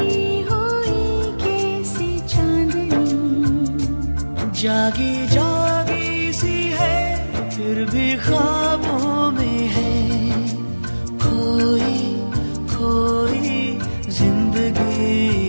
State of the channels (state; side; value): inverted; both; correlation -1.00